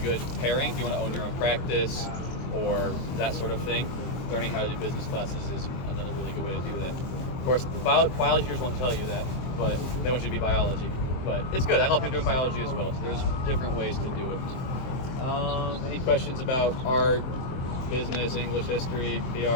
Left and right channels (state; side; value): late; right; 23 ms